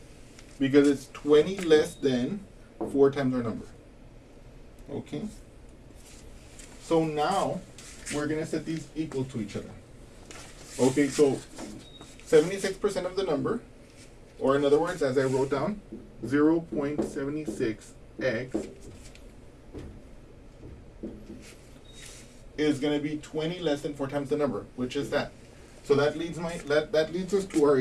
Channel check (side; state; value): both; identical; correlation 1.00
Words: Because it's 20 less than 4 times our number. Okay? So now we're going to set these equal to each other. Okay, so 76% of the number, or in other words, as I wrote down, 0.76x is going to be 20 less than 4 times the number, which is that. So that leads us to our